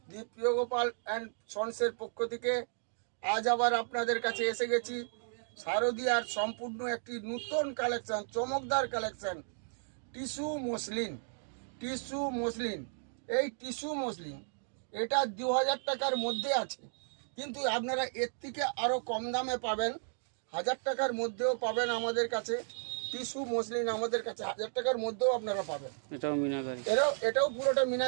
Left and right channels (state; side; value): silent; left; digital silence